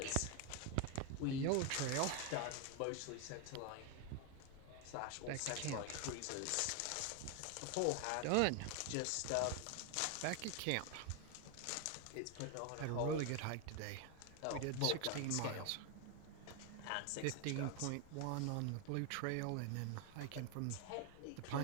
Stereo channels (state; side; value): different; both; correlation 0.01